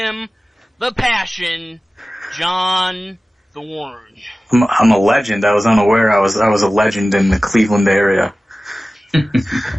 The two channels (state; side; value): normal; both; correlation 0.96